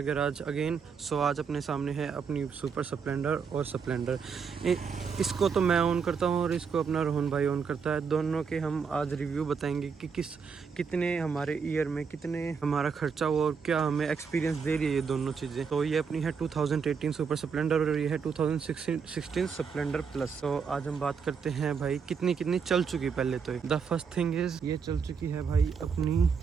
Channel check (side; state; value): left; quieter; 6.0 dB